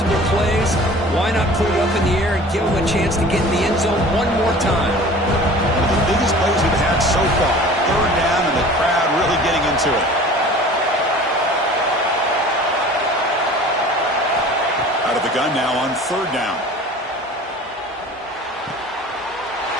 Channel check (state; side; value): normal; both; correlation 0.44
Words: plays. Why not put it up in the air and give him a chance to get in the end zone one more time? One of the biggest plays we've had so far. Third down and the crowd really getting into it. Out of the gun now on third down.